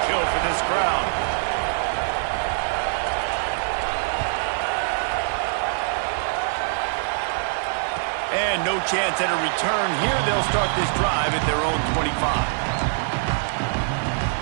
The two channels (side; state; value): left; silent; digital silence